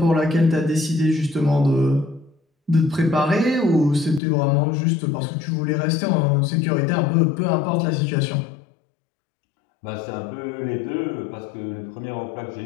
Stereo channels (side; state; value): right; drops out; at 4.2 s